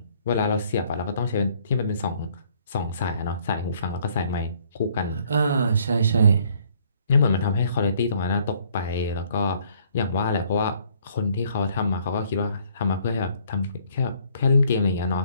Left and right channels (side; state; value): both; inverted; correlation -0.63